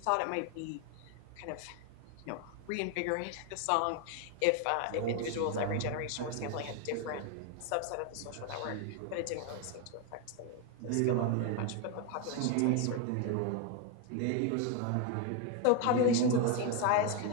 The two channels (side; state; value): both; different; correlation 0.01